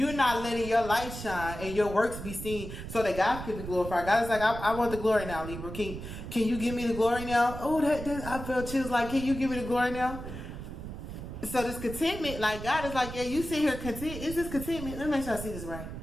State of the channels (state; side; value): noise; right; rumble, 9 dB below the sound